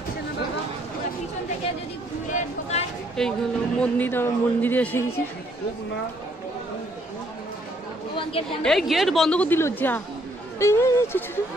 এই হলো মন্দির, আমার মন্দিরে এসে গেছি। এই গেট বন্ধ করে দিল যা।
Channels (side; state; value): both; normal; correlation 0.68